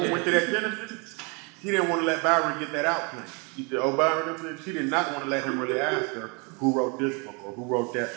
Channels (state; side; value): quieter; left; 32.2 dB